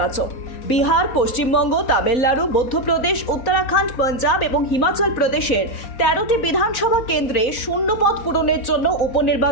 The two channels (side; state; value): right; late; 4.0 ms